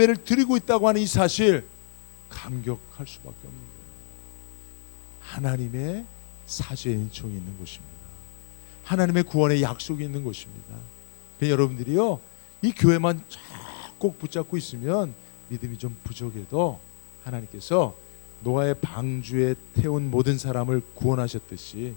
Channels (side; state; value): right; silent; digital silence